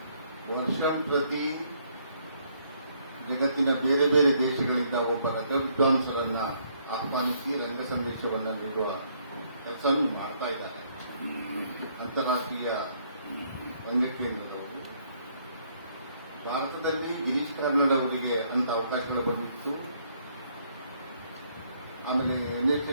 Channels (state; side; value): inverted; both; correlation -0.68